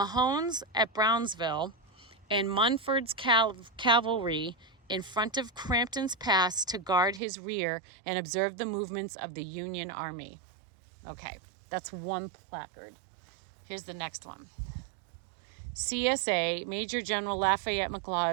at Brownsville and Munford's cavalry in front of Crampton's Pass to guard his rear and observe the movements of the Union Army. Okay, that's one placard. Here's the next one. CSA, Major General Lafayette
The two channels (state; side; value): drops out; left; at 7.2 s